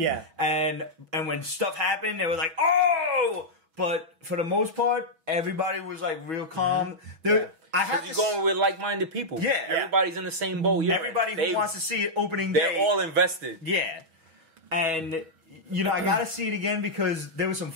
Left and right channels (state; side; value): late; left; 6.2 ms